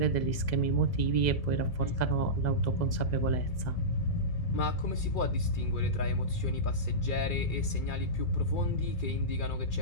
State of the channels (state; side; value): late; right; 2.3 ms